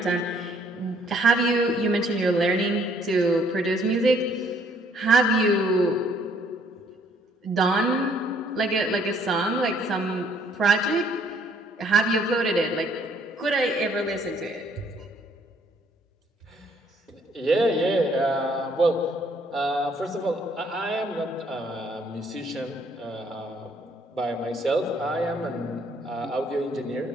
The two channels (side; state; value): both; normal; correlation 0.64